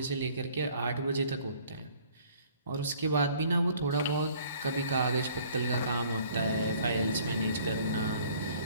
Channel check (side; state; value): both; inverted; correlation -0.56